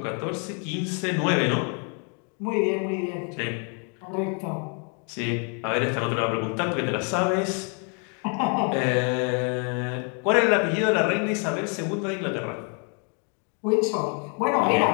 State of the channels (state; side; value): quieter; right; 39.1 dB